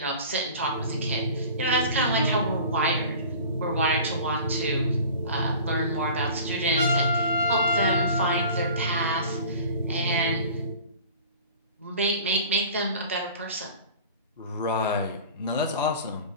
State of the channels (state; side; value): inverted; both; correlation -0.42